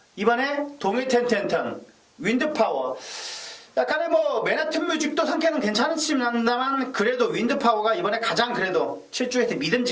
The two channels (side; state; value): both; identical; correlation 1.00